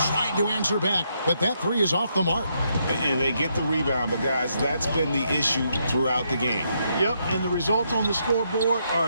Tried to answer back, but that three is off the mark. And they get the rebound, but guys, that's been the issue throughout the game. Yep, and the results on the scoreboard are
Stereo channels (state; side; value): inverted; both; correlation -0.77